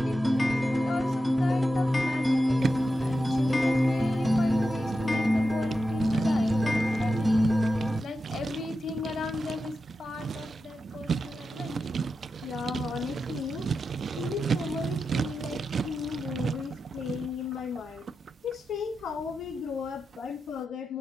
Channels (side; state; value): both; normal; correlation 0.90